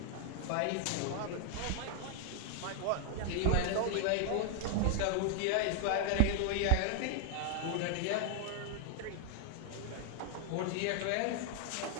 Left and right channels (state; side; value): different; both; correlation 0.00